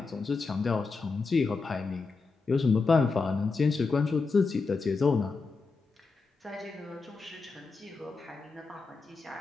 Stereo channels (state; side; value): quieter; right; 4.3 dB